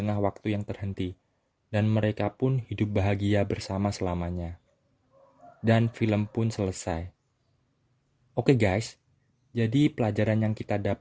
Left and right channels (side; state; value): both; identical; correlation 1.00